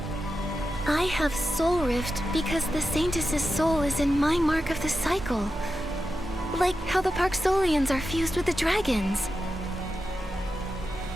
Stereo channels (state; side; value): normal; both; correlation 0.90